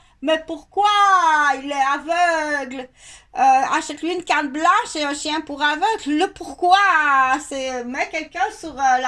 Mais pourquoi il est aveugle? Achète-lui une canne blanche et un chien pour aveugle. Le pourquoi, c'est mets quelqu'un sur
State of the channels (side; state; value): both; identical; correlation 1.00